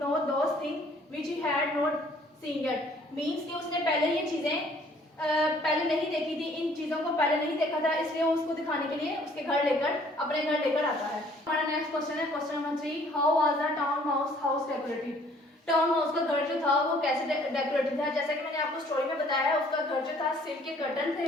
those thing which he had not seen yet. Means कि उसने पहले ये चीजें पहले नहीं देखी थी, इन चीजों को पहले नहीं देखा था, इसलिए वो उसको दिखाने के लिए उसके घर लेकर अपने घर लेकर आता है। हमारा नेक्स्ट क्वेश्चन है question number 3, how was the town mouse house decorated. Town mouse का घर जो था वो कैसे डेकोरेटेड था। जैसा कि मैंने आपको स्टोरी में बताया है, उसका घर जो था सिल्क के कर्टन थे,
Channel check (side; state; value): both; normal; correlation 0.58